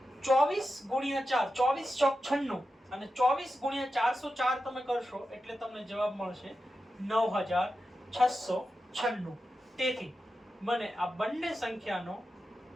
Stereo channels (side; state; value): both; normal; correlation 0.91